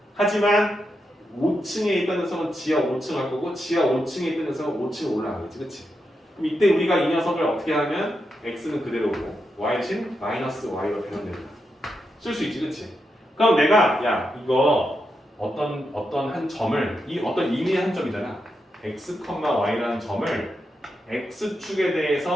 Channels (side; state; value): both; normal; correlation 0.85